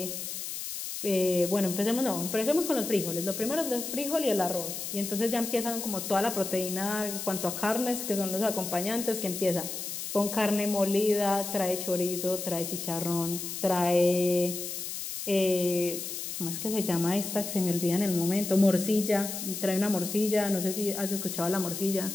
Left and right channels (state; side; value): noise; left; hiss, 6 dB below the sound